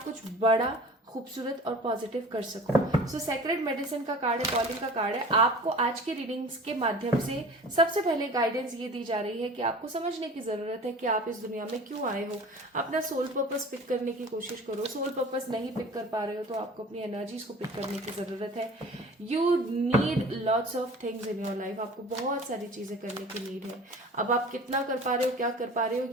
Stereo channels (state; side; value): normal; both; correlation 0.42